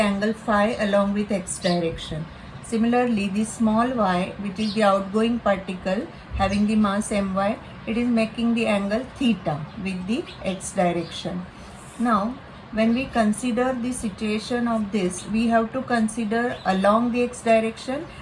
phi along with x direction. Similarly, the small y, which is the outgoing particle having the mass my, it is making the angle theta with the x direction. Now, when we consider the situation of this, we have to consider along the x direction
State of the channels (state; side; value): identical; both; correlation 1.00